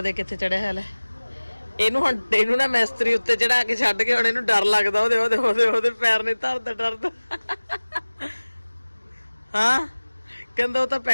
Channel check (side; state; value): both; inverted; correlation -1.00